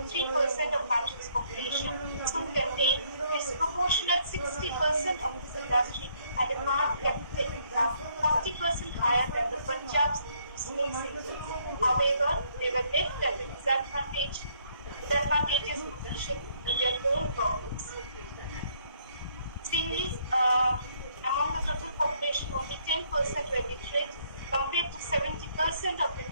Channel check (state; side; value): inverted; both; correlation -0.68